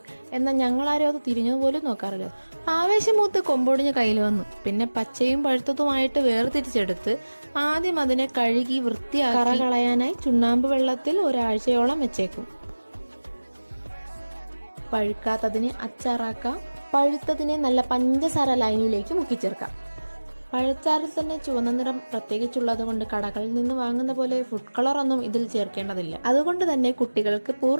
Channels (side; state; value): both; inverted; correlation -1.00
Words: എന്നാൽ ഞങ്ങളാരും അത് തിരിഞ്ഞതുപോലും നോക്കാറില്ല. ആവേശമൂത്ത് കൊമ്പൊടിഞ്ഞ് കയ്യിൽ വന്നു. പിന്നെ പച്ചയും പഴുത്തതുമായിട്ട് വേർതിരിച്ചെടുത്ത് ആദ്യം അതിനെ കഴുകി വൃത്തിയാക്കി കറ കളയാനായി ചുണ്ണാമ്പ് വെള്ളത്തിൽ ഒരാഴ്ചയോളം വെച്ചേക്കും. പഴുക്കാത്തതിനെ അച്ചാറാക്കാം, പഴുത്തതിനെ നല്ല പഞ്ചസാര ലൈനിലേക്ക് മുക്കിച്ചേർക്കാം. പഴച്ചാറിൽ തന്നെ ചുവന്ന നിറം പ്രത്യേകിച്ചുള്ളത് കൊണ്ട് കടകളിൽ നിന്ന് വാങ്ങുന്ന പോലെ ഫുഡ് കളർ ഒന്നും ഇതിൽ ചേർക്കേണ്ടതില്ല. അതുകൊണ്ട് തന്നെ കുട്ടികൾക്ക്